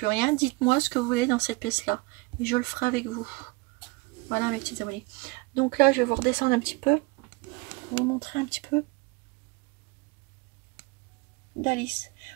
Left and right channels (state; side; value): quieter; left; 25.4 dB